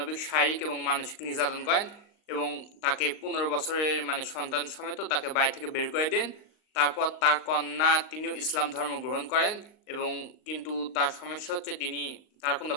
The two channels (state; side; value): late; right; 38 ms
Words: শারীরিক এবং মানসিক নির্যাতন করেন এবং তাকে 15 বছরের সন্তান সমেত তাকে বাড়ি থেকে বের করে দেন। তারপর তার কন্যা তিনিও ইসলাম ধর্ম গ্রহণ করেন এবং কিন্তু তার সমস্যা হচ্ছে তার কোনো